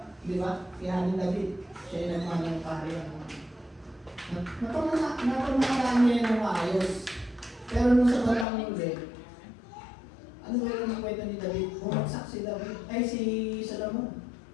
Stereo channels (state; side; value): drops out; right; at 8.5 s